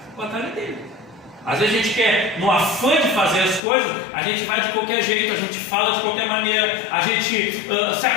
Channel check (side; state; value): right; drops out; at 3.6 s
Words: a batalha dele. Às vezes a gente quer, no afã de fazer as coisas, a gente vai de qualquer jeito, a gente fala de qualquer maneira, a gente se